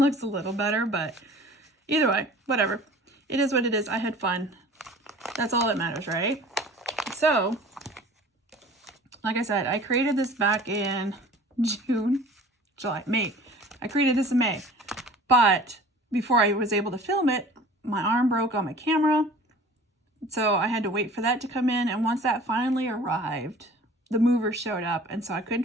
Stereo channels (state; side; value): normal; both; correlation 0.45